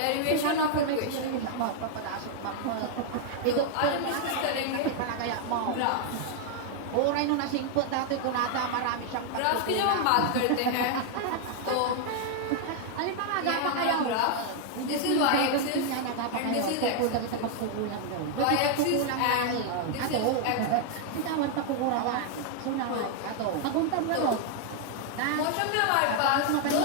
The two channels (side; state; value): both; different; correlation 0.00